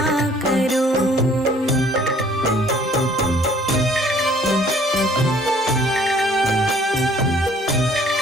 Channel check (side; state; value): both; normal; correlation 0.57